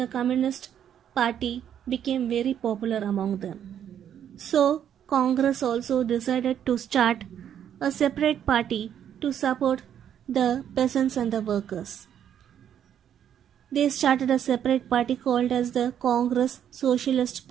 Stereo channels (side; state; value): left; quieter; 9.5 dB